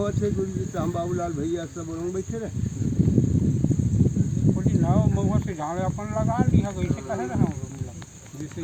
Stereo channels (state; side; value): identical; both; correlation 1.00